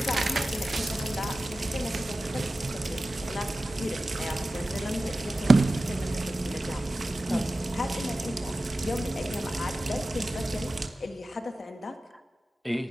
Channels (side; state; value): both; normal; correlation 0.95